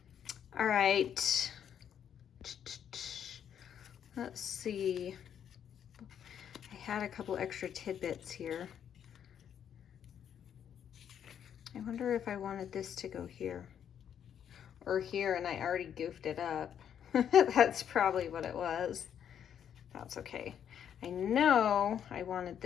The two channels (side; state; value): right; quieter; 8.9 dB